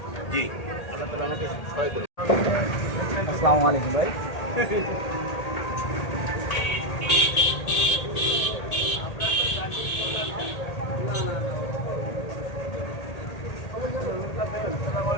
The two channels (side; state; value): right; late; 1.8 ms